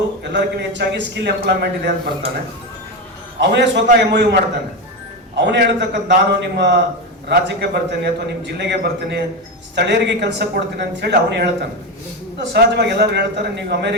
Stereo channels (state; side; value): normal; both; correlation 0.16